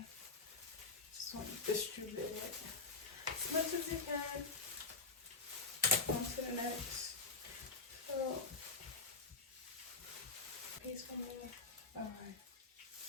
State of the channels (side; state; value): right; quieter; 3.9 dB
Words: Just want to distribute it as much as you can. On to the next. So, piece for me. All right.